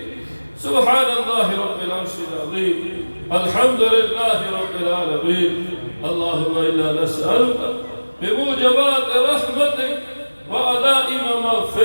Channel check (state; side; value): inverted; both; correlation -1.00